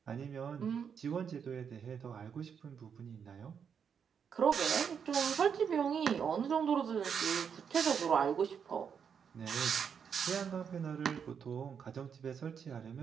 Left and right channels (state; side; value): quieter; left; 7.1 dB